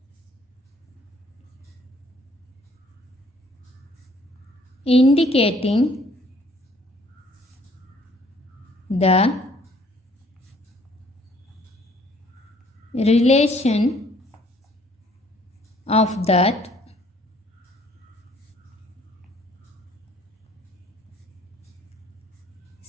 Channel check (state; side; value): normal; both; correlation 0.61